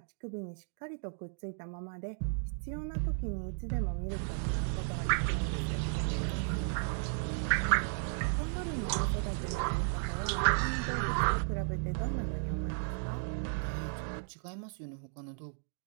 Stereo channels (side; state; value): left; silent; 55 dB below the other